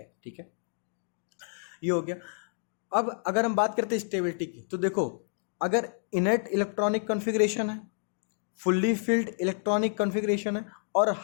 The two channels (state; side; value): silent; right; digital silence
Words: ठीक है, ये हो गया। अब अगर हम बात करते हैं स्टेबिलिटी की, तो देखो अगर इनर्ट इलेक्ट्रॉनिक कॉन्फ़िगरेशन है, फुल्ली फिल्ड इलेक्ट्रॉनिक कॉन्फ़िगरेशन है और